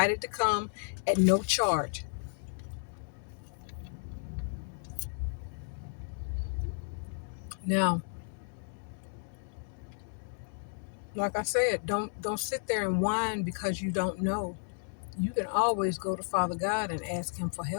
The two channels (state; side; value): silent; right; digital silence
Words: to come at no charge. Now, like I said, don't sit there and whine because you don't know. You can always go to Father God and ask him for